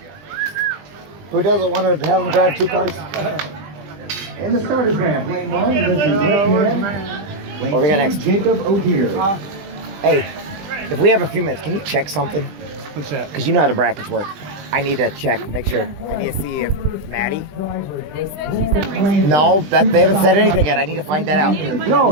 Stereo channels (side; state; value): left; late; 20 ms